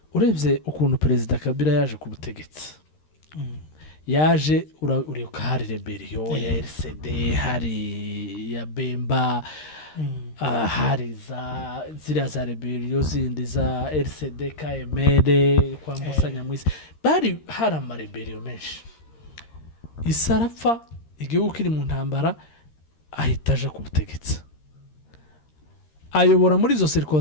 urebye ukuntu perezida Kabila yaje ku butegetsi yaje uribuka hari rebellion ya RCD hari ya Bemba hari ziriya za rebellion zindi za RCD KML kwambusanya mwisi bari hari amarebellion menshi isarapfa igihugu kiri mu ntambara ahita aje ku butegetsi ayobora muri izo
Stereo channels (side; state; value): right; late; 13 ms